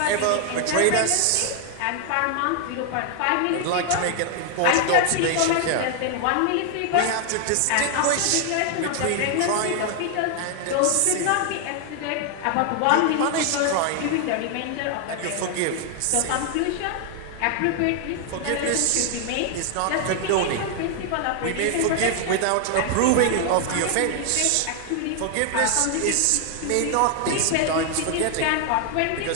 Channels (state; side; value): different; both; correlation 0.00